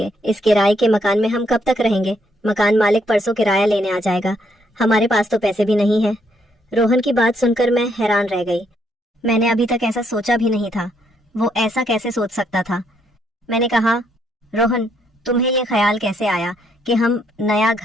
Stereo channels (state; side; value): normal; both; correlation 0.73